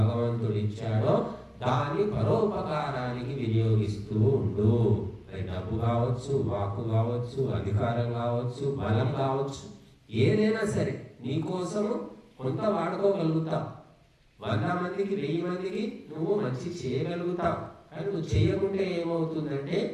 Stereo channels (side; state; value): both; identical; correlation 1.00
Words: ఇచ్చాడో దాన్ని పరోపకారానికి వినియోగిస్తూ ఉండు. అది డబ్బు కావచ్చు, వాక్కు కావచ్చు, అధికారం కావచ్చు, బలం కావచ్చు, ఏదైనా సరే నీకోసము కొంత వాడుకోగలుగుతావు. 100 మందికి, 1000 మందికి నువ్వు మంచి చేయగలుగుతావు. కానీ నువ్వు చేయకుంటే ఏమవుతుందంటే